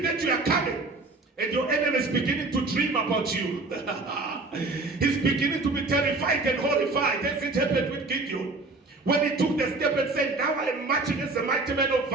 that you are coming. And your enemy is beginning to dream about you. He's beginning to be terrified and horrified, as it happened with Gideon. When he took the step and said, now I am marching as a mighty man of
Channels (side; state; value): left; quieter; 3.4 dB